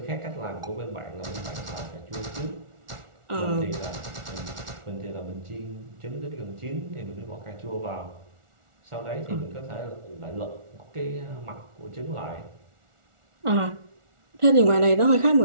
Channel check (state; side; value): late; left; 1.4 ms